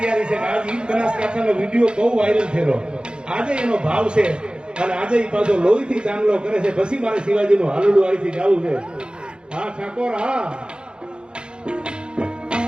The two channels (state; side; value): late; left; 0.051 ms